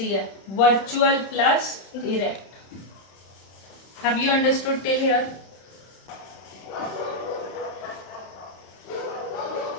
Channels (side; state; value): right; late; 31 ms